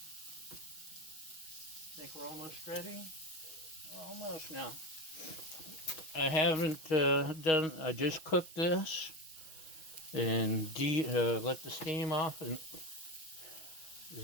Think we're almost ready? Almost now. I haven't I just cooked this and let the steam off, and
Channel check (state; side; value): late; right; 6.0 ms